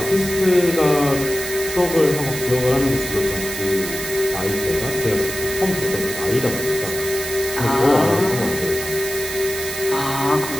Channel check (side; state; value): right; noise; hiss, 7 dB below the sound